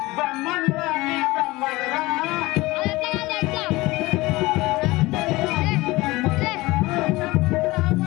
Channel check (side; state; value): right; quieter; 20.7 dB